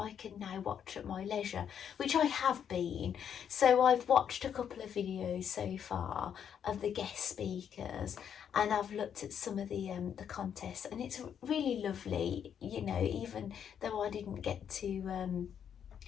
can now watch at my leisure, which I have been. So I've watched a couple of videos so far of the guest speakers, and I've looked at some of the contests, and it's really lovely, you know, even though I didn't get to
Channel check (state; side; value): quieter; right; 8.4 dB